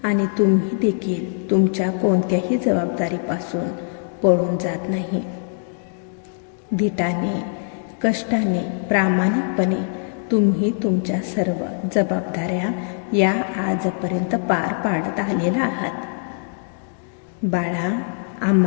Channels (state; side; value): silent; right; digital silence